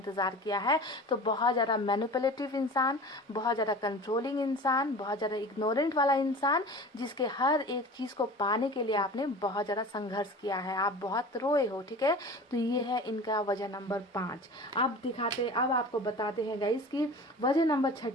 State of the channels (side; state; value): both; normal; correlation 0.37